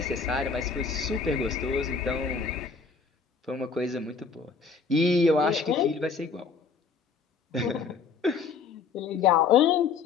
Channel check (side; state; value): right; quieter; 5.2 dB